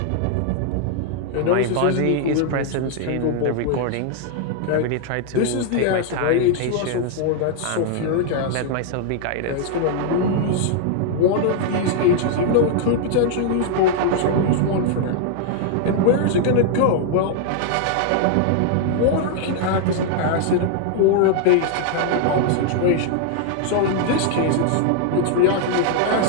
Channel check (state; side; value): different; both; correlation 0.00